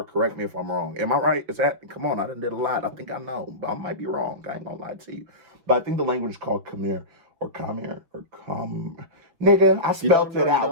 Correct me if I'm wrong. Am I right? Is that? Come on, I done did a lot. I think I know, but I might be wrong. I ain't gonna lie to you. But I think the language is called Khmer or Khmer or Khmer. Nigga, I spelled it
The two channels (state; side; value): late; left; 5.9 ms